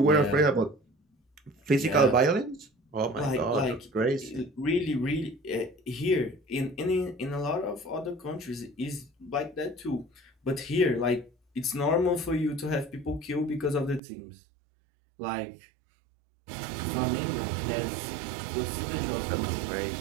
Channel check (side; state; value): left; drops out; at 14.0 s